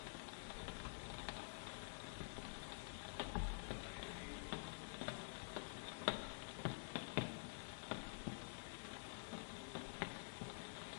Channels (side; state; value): right; silent; digital silence